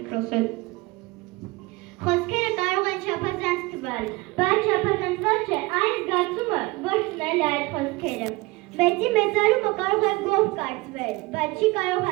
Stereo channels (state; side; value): quieter; left; 23.0 dB